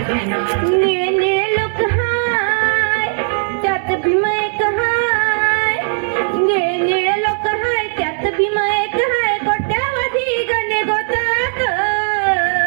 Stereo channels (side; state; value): left; silent; 62 dB below the other